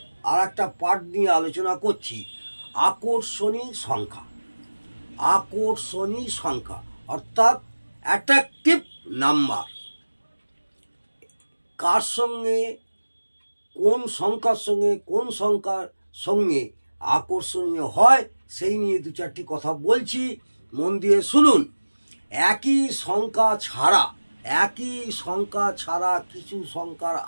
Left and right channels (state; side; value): inverted; both; correlation -1.00